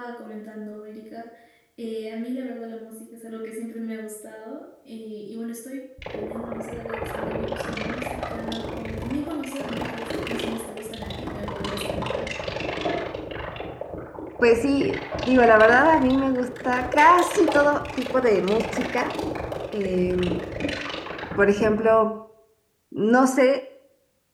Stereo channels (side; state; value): both; identical; correlation 1.00